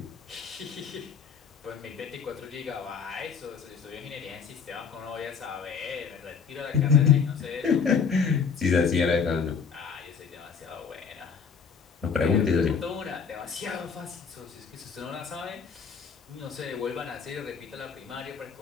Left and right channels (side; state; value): right; quieter; 6.0 dB